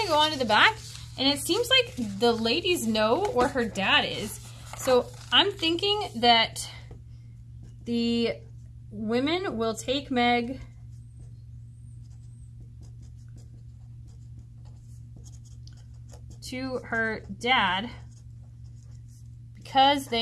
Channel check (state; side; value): identical; both; correlation 1.00